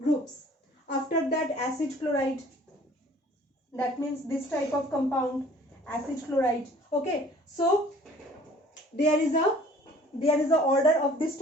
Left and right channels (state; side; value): normal; both; correlation 0.52